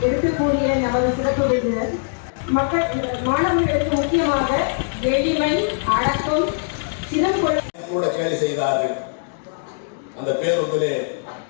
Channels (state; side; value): silent; right; digital silence